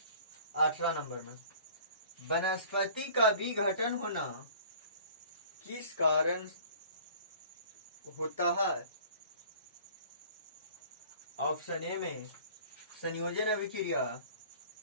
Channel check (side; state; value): both; inverted; correlation -0.48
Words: 18 नंबर में, वनस्पति का विघटन होना किस कारण होता है? ऑप्शन ए में संयोजन अभिक्रिया,